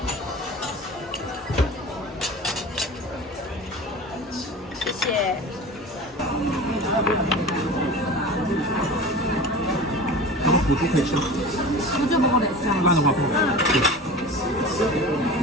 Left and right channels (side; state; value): both; normal; correlation 0.35